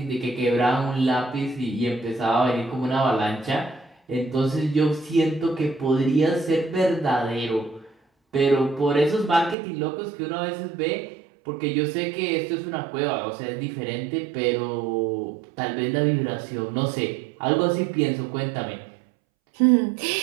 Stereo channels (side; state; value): left; drops out; at 9.6 s